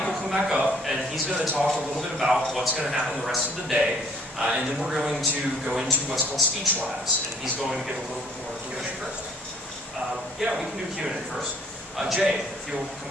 come back up, and he's going to talk a little bit about what's going to happen the rest of the day. And then we're going to go into what's called speech labs, and he's going to give a little bit more Q&A first. Yeah, we can do Q&A first. Jay, if you'll come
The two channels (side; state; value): both; normal; correlation 0.59